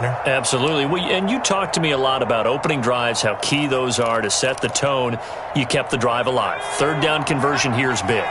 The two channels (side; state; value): both; identical; correlation 1.00